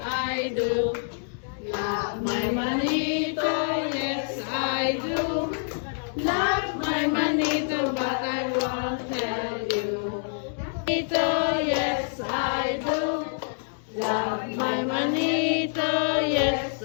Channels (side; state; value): right; silent; digital silence